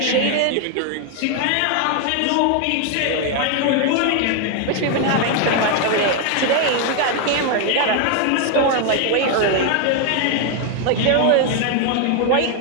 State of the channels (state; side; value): different; both; correlation 0.01